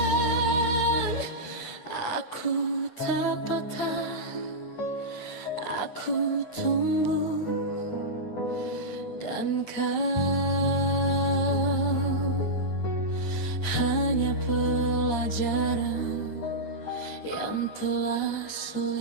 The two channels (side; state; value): right; late; 8.7 ms